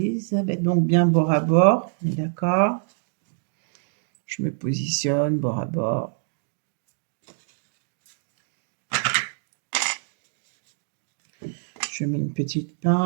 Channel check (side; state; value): left; silent; digital silence